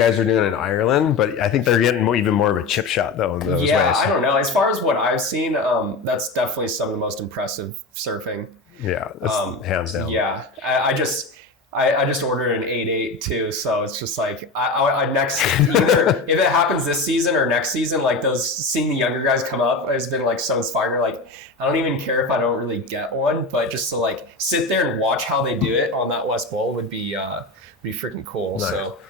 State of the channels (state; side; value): quieter; right; 3.5 dB